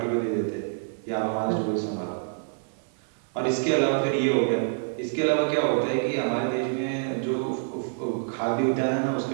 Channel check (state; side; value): silent; left; 60 dB below the other